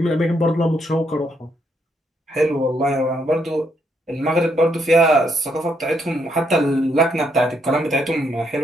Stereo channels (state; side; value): normal; both; correlation 0.75